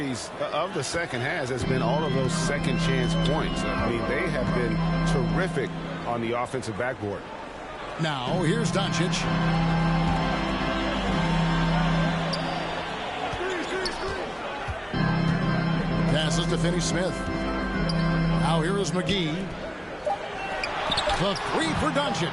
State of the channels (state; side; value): identical; both; correlation 1.00